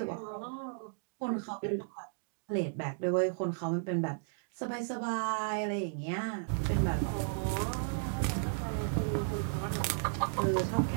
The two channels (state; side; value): silent; left; digital silence